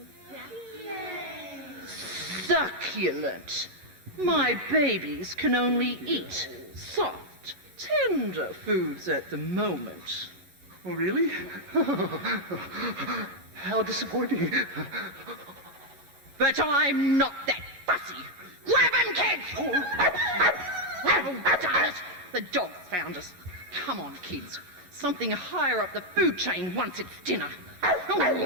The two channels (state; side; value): late; left; 11 ms